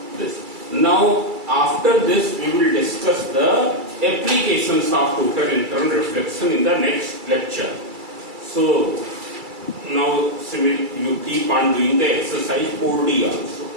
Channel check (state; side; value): late; left; 2.3 ms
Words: this. Now after this we will discuss the applications of total internal reflection in the next lecture. So now you keep on doing the exercise 4D also.